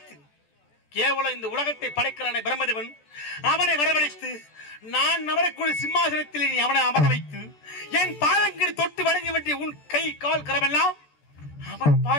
கேவலம் இந்த உலகத்தை படைக்கிறானே பிரம்மதேவன் அவனை வரவழைத்து நான் அமரக்கூடிய சிம்மாசனத்தில் நீ அவனை அமர வைத்து என் பாதங்களை தொட்டு வணங்கி வேண்டிய உன் கை கால் கரமெல்லாம் அவன்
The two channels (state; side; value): late; right; 14 ms